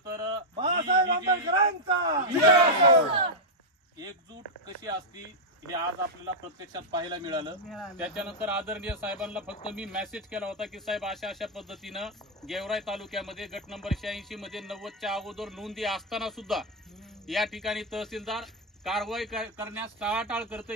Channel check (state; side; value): normal; both; correlation -0.02